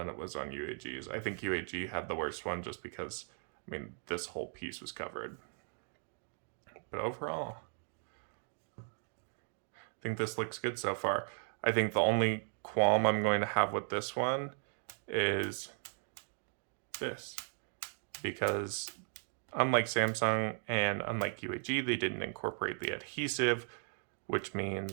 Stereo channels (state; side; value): silent; left; 53 dB below the other